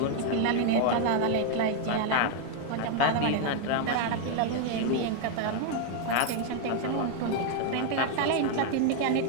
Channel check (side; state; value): both; different; correlation 0.00